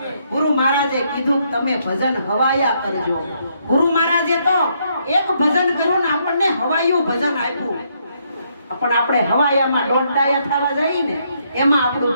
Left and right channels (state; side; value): inverted; both; correlation -0.74